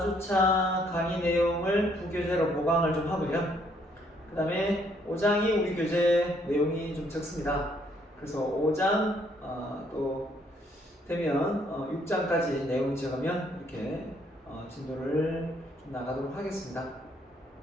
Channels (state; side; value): normal; both; correlation 0.68